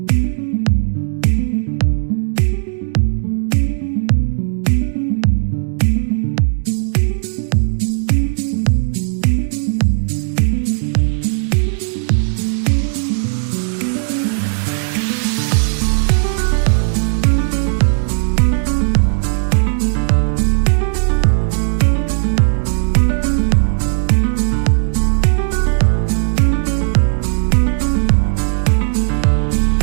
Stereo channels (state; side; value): silent; left; digital silence